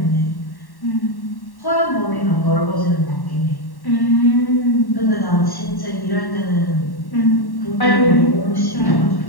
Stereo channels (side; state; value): right; late; 1.1 ms